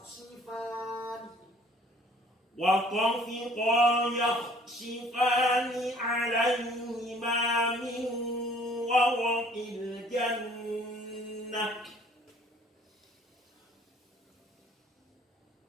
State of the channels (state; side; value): normal; both; correlation 0.56